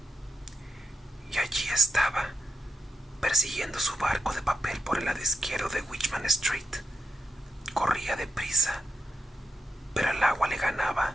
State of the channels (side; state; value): both; normal; correlation 0.84